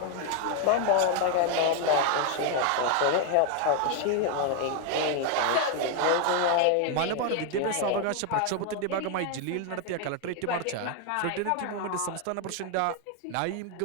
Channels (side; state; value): both; different; correlation 0.00